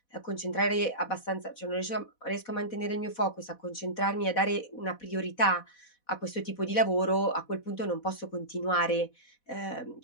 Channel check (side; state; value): right; late; 4.1 ms